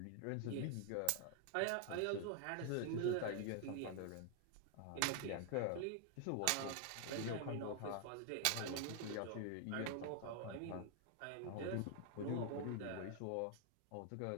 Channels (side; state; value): both; different; correlation 0.00